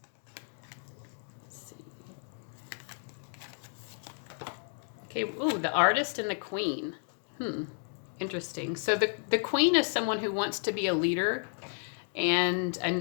Let's see. Okay, ooh, the Artist and the Queen. Interesting. So the Queen is someone who wants to be a leader, and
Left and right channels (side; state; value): right; silent; 56 dB below the other